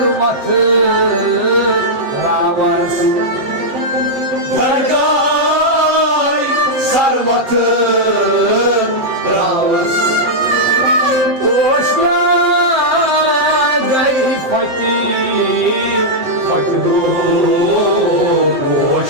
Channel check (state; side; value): late; left; 7.6 ms